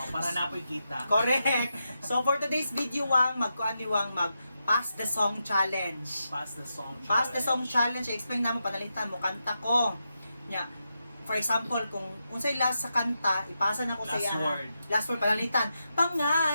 napoy kita. Correct. So for today's video Wang, magkuan ni Wang mag Pass the Song Challenge. Pass the song. Pass the Song Challenge, explain na mo, panalitan mo, kanta ko. Nya, for example, kung unsay last sa kanta, ipasa na ko sa Last iya. word. Last word, panalitan.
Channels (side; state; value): both; inverted; correlation -0.86